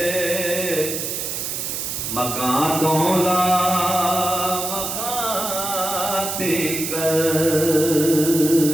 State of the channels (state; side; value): noise; right; hiss, 4 dB below the sound